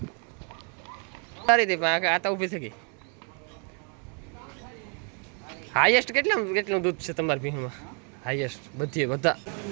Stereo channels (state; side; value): quieter; left; 38.7 dB